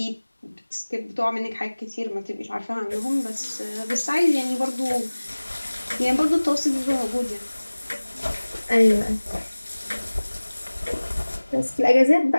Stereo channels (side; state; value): both; inverted; correlation -1.00